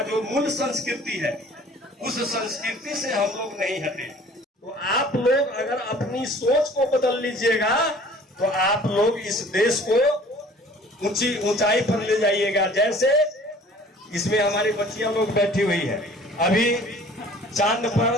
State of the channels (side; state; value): both; normal; correlation 0.50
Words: जो मूल संस्कृति है, उस संस्कृति से हम लोग नहीं हटे। तो आप लोग अगर अपनी सोच को बदल लीजिएगा तो आप लोग इस देश को ऊंचाई पर ले जाइएगा। जैसे इसमें हमारी बच्चियां लोग बैठी हुई है, अभी चांद